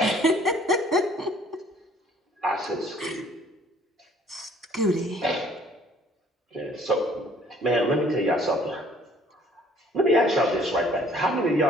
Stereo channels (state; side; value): normal; both; correlation 0.57